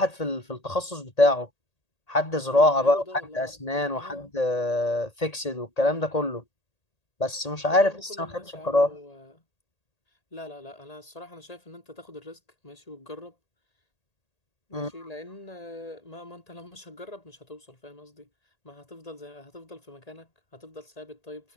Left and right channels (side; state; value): right; late; 1.8 ms